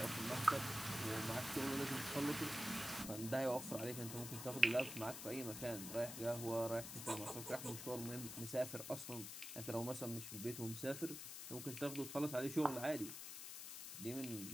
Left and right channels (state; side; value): noise; left; hiss, 8 dB below the sound